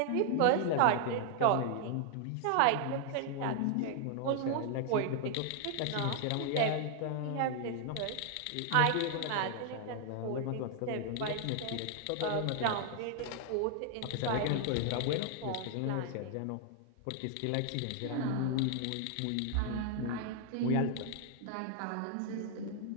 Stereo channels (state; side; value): different; both; correlation 0.00